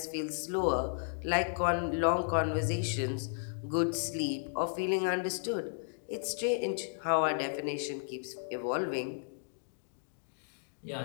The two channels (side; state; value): right; silent; digital silence